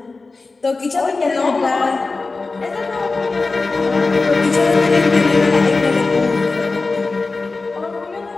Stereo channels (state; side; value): quieter; right; 3.8 dB